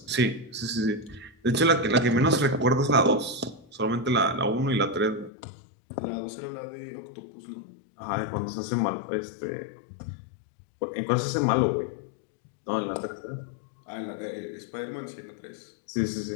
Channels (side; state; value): right; drops out; at 5.3 s